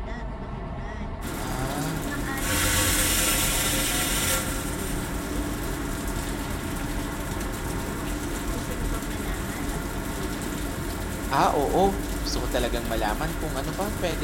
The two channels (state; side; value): identical; both; correlation 1.00